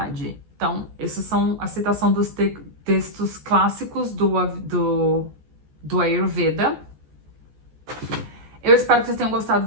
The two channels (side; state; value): left; late; 14 ms